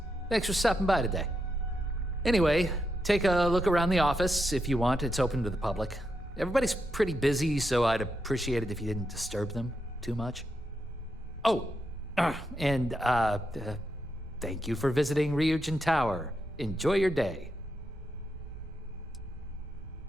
Thanks for stopping by today. Anyway, take a look around the office if you want. It's open to the public. Everybody's pretty busy, so I'd appreciate it if you didn't disturb them too much. Oh, and thank you for visiting Ryujin Tower. Enjoy your day.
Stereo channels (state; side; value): normal; both; correlation 0.84